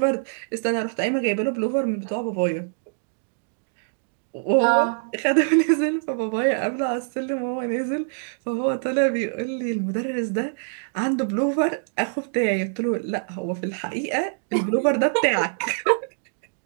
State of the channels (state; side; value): silent; left; digital silence